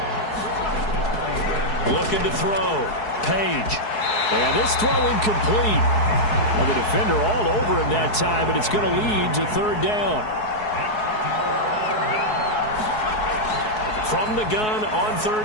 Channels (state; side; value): late; right; 4.7 ms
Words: Looking to throw. Page. And this throw incomplete. Well, the defender all over him that time, but it's going to lead to 3rd down. From the gun on